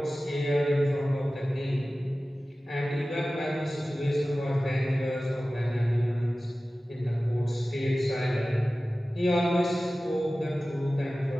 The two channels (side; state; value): both; normal; correlation 0.96